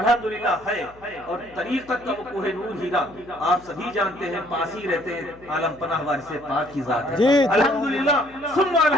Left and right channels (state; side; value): noise; left; hum, 25 dB below the sound